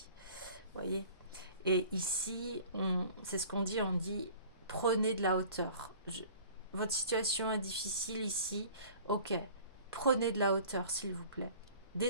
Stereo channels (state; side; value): inverted; both; correlation -0.47